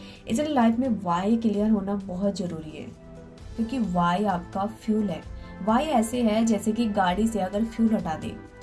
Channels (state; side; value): identical; both; correlation 1.00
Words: इसलिए लाइफ में वाई क्लियर होना बहुत जरूरी है, क्योंकि वाई आपका फ्यूल है। वाई ऐसे है जैसे कि गाड़ी से अगर फ्यूल हटा दे